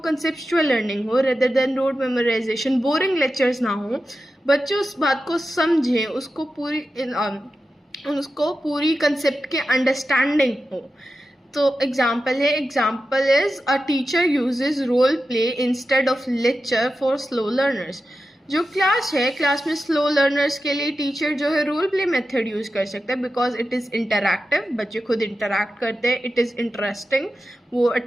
लर्निंग हो rather than road memorisation, boring lectures ना हो, बच्चे उस बात को समझें, उसको पूरी कंसेप्ट के अंडरस्टैंडिंग हो। तो एग्जाम्पल है, example is a teacher uses role play instead of lecture for slow learners. जो क्लास है, क्लास में स्लो लर्नर्स के लिए टीचर जो है रोल प्ले मेथड यूज कर सकता है, बिकॉज इट इज़ इंटरैक्टिव, बच्चे खुद इंटरैक्ट करते हैं, इट इज़ इंटरेस्टिंग, वो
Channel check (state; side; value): normal; both; correlation 0.91